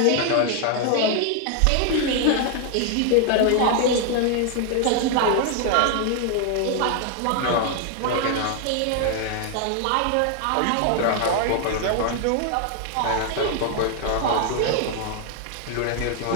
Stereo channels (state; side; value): different; both; correlation 0.00